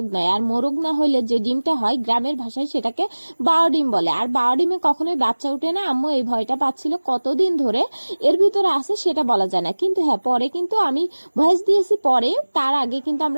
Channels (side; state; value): both; inverted; correlation -1.00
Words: নাই। আর মোরগ না হইলে যে ডিমটা হয় গ্রামের ভাষায় সেটাকে বারো ডিম বলে, আর বারো ডিমে কখনোই বাচ্চা উঠে না। আম্মু এই ভয়টা পাচ্ছিল কতদিন ধরে এর ভিতরে আছে সেটা বলা যায় না, কিন্তু হ্যাঁ পরে কিন্তু আমি ভয়েস দিয়েছি পরে। তার আগে কিন্তু